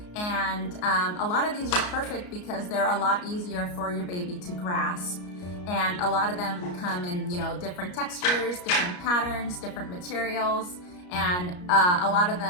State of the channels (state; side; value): late; right; 33 ms